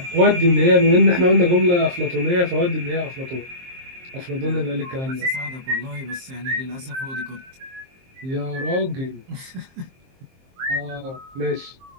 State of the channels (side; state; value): left; late; 23 ms